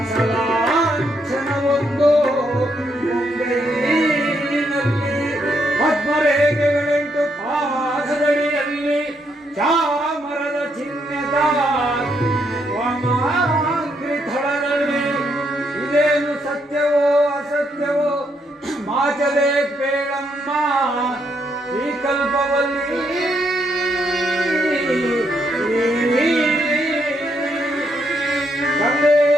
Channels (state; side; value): normal; both; correlation 0.76